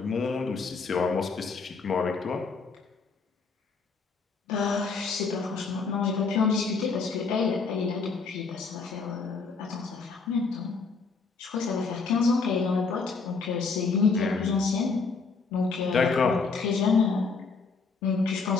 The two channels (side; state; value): right; quieter; 4.6 dB